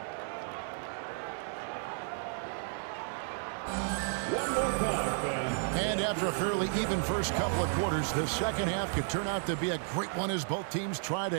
And after a fairly even first couple of quarters, the second half could turn out to be a great one as both teams try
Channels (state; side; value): silent; left; digital silence